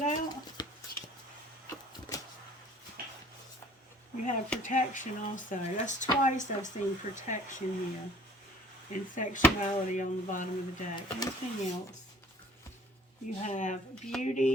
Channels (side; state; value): both; normal; correlation 0.52